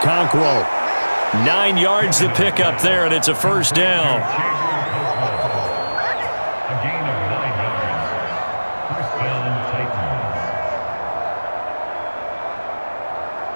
9 yards to pick up there, and it's a first down.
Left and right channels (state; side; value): inverted; both; correlation -1.00